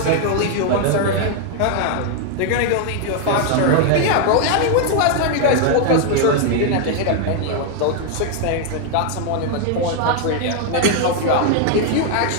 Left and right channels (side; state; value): both; different; correlation 0.00